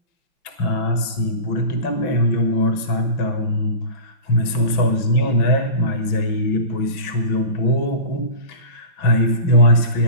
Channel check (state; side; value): late; right; 6.1 ms